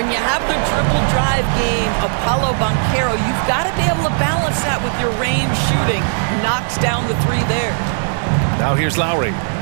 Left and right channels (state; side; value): silent; left; 68 dB below the other